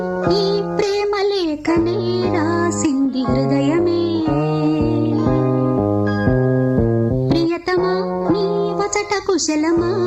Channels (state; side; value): identical; both; correlation 1.00